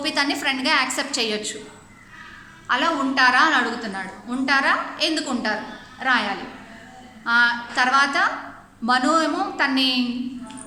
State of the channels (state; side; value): identical; both; correlation 1.00